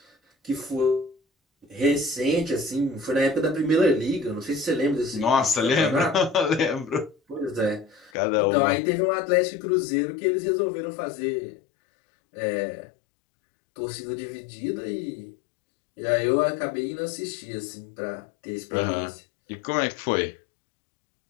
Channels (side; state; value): right; drops out; at 8.1 s